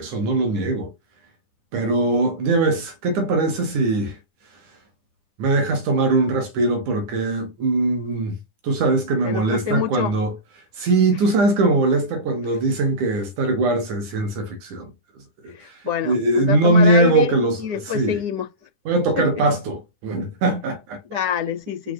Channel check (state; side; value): late; left; 9.9 ms